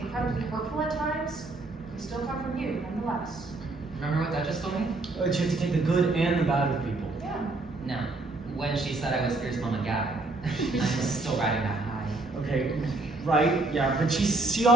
incredibly hurtful at times, they still come from you nonetheless. Remember what Duchess told me? You have to take the good and the bad with people. Yeah. No. When she said I was fierce mama guy, I'm still riding that high. Okay, right, yeah, but she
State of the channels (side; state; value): left; quieter; 3.1 dB